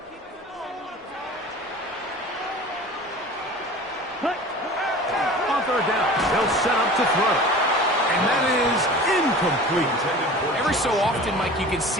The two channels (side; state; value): both; normal; correlation 0.39